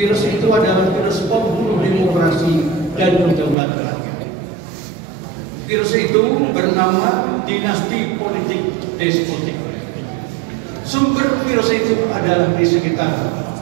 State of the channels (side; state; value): left; drops out; at 3.6 s